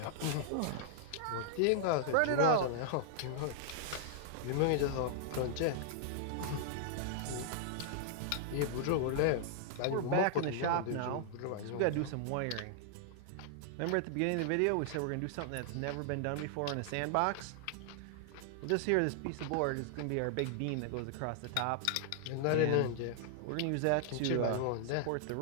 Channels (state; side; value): different; both; correlation -0.01